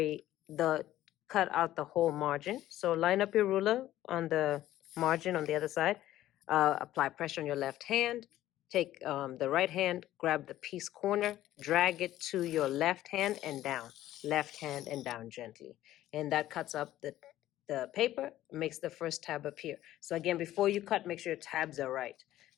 cut out the whole margin. So line up your ruler on the margin on the other side, apply pressure on your left hand, take the right hand, grab the piece corner, drag it to your left hand and down, left hand and down gently. And that cuts up the paper, makes the first tab appear. So again, before you cut, make sure your tabs are right.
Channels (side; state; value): right; quieter; 14.0 dB